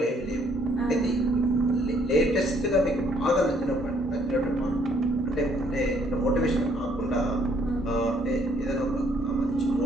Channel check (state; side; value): normal; both; correlation 0.66